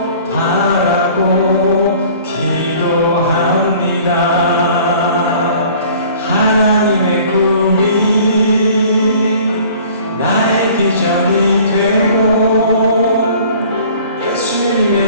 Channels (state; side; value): inverted; both; correlation -0.50